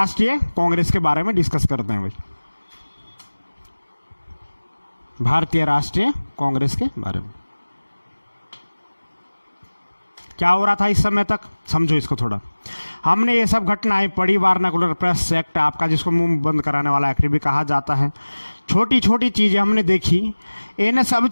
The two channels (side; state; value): both; inverted; correlation -1.00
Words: कांग्रेस के बारे में डिस्कस करते हैं भाई, भारतीय राष्ट्रीय कांग्रेस के बारे में क्या हो रहा था इस समय तक, समझो इसको थोड़ा। हमने ये सब घटनाएं पढ़ी, वारनाकुलर प्रेस एक्ट आपका, जिसको मुंह बंद कराने वाला एक्ट भी कहा जाता है। छोटी छोटी चीजें हमने देखी। इन सब